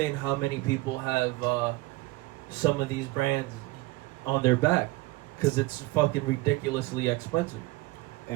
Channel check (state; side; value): quieter; left; 20.8 dB